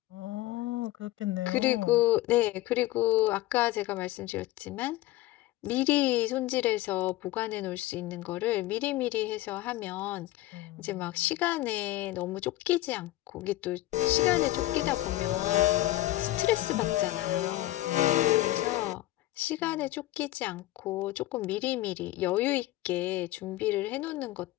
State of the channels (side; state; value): right; quieter; 16.4 dB